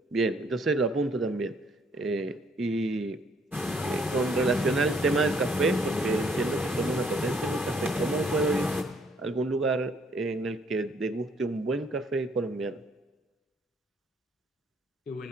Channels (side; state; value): both; normal; correlation 0.65